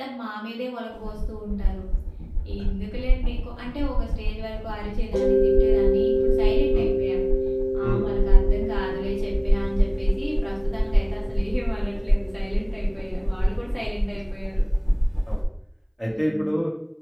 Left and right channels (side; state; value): both; identical; correlation 1.00